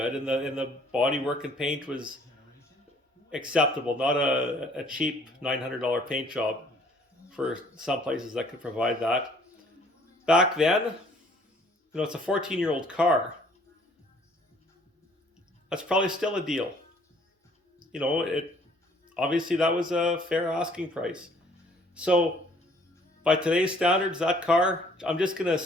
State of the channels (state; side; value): normal; both; correlation 0.59